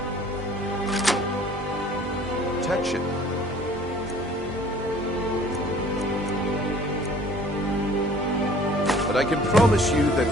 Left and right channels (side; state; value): both; normal; correlation 0.52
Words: protection. But I can promise you